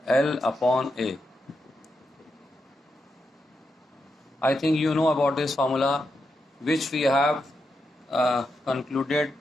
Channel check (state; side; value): normal; both; correlation 0.85